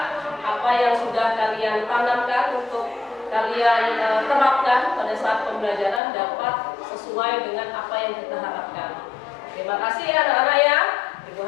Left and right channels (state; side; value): drops out; right; at 6.0 s